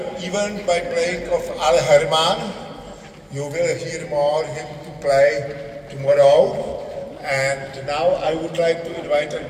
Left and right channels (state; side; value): identical; both; correlation 1.00